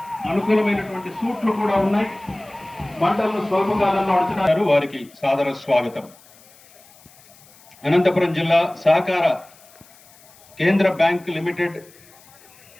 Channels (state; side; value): noise; left; hiss, 26 dB below the sound